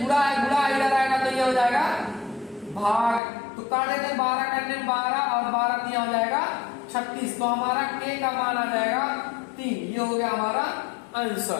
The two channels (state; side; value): drops out; right; at 3.2 s